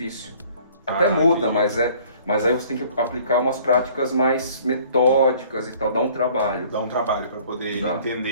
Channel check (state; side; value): inverted; both; correlation -0.55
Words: Até muda, mas aí você tem que aplicar umas práticas mais metódicas e tal, dá um trabalho. Dá um trabalho para poder